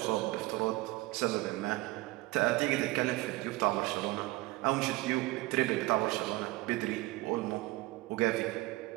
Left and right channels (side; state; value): left; quieter; 20.2 dB